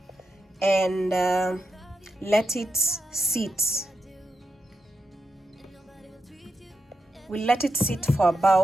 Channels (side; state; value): both; normal; correlation 0.87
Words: and let it sit. We'll let it sit for